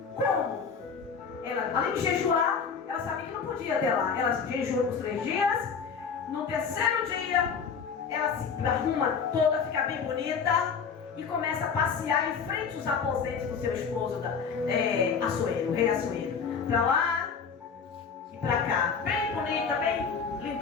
Como? Ela, além de jejuar, ela sabia que não podia ir até lá. Ela jejuou por 3 dias. No terceiro dia, ela se arruma toda, fica bem bonita e começa a passear em frente aos aposentos do seu esposo, Assuero, o rei Assuero. Pra lá e pra cá. Bem bonita, bem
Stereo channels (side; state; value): right; quieter; 6.1 dB